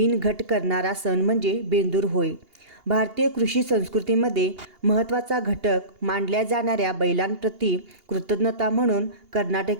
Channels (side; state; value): left; late; 2.8 ms